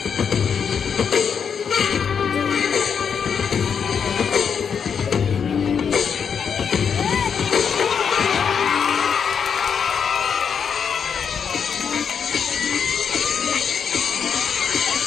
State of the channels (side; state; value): right; quieter; 6.9 dB